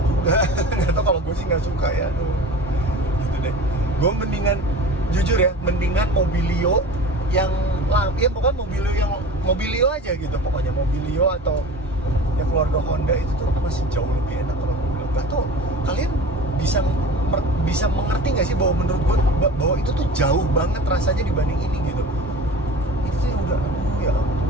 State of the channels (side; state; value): both; normal; correlation 0.37